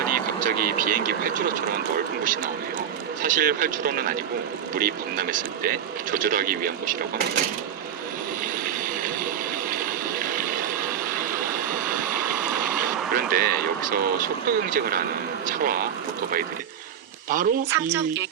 갑자기 비행기 활주로처럼 넓은 곳이 나오네요. 사실 활주로는 아니고 물이 범람했을 때 조절하기 위한 곳이라고 합니다. 그런데 여기서 속도 경쟁을 하는 차와 오토바이들이 바로 이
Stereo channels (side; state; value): left; quieter; 9.0 dB